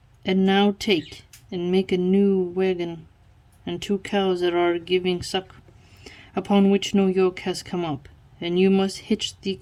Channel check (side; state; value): both; identical; correlation 1.00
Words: And now take and make a new wagon, and 2 cows that are giving suck, upon which no yoke has come up, and you must hitch the